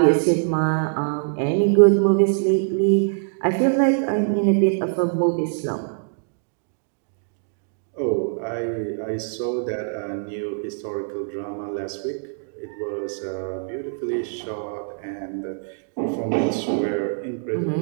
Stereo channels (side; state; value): left; silent; 63 dB below the other